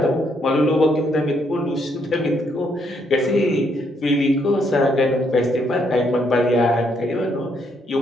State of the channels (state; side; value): normal; both; correlation 0.73